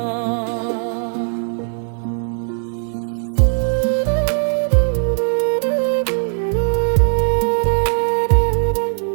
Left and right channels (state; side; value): silent; left; digital silence